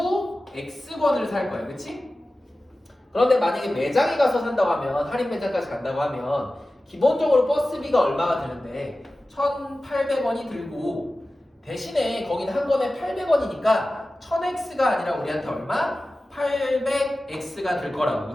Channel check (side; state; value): both; normal; correlation 0.95